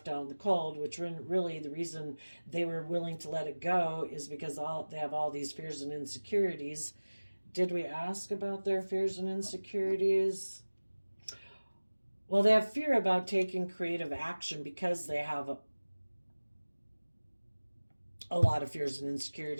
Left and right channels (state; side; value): inverted; both; correlation -1.00